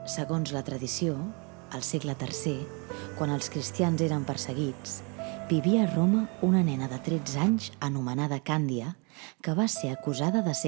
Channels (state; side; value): quieter; left; 32.5 dB